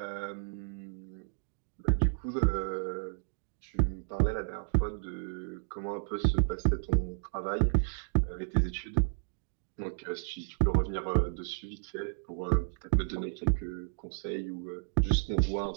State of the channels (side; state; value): left; silent; digital silence